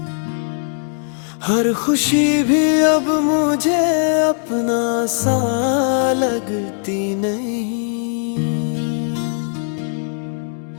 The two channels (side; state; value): right; silent; digital silence